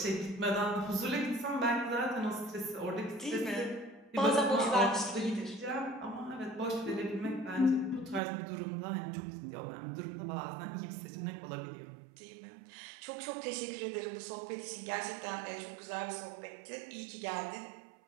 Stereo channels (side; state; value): left; drops out; at 8.2 s